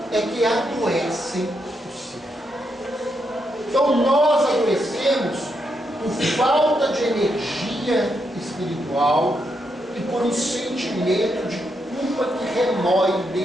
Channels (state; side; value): normal; both; correlation 0.81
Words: é que adoecem o ser. Então nós adoecemos por falta de energia espiritual e por um sentimento de culpa que remói